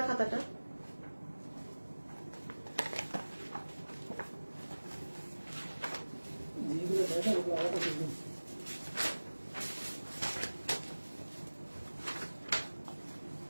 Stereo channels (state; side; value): inverted; both; correlation -1.00